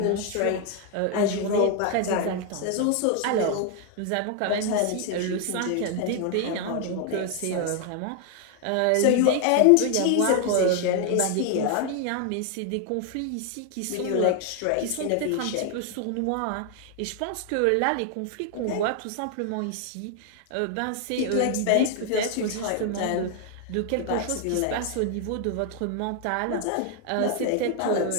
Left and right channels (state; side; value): different; both; correlation 0.00